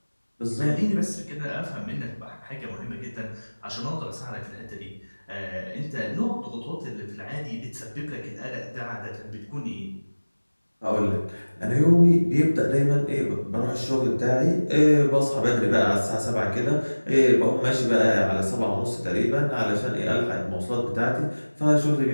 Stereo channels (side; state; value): both; inverted; correlation -1.00